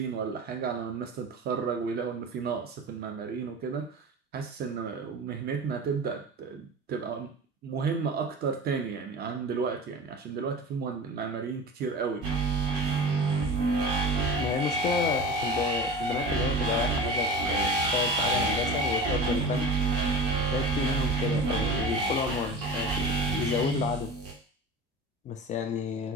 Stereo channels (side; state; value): both; normal; correlation 0.33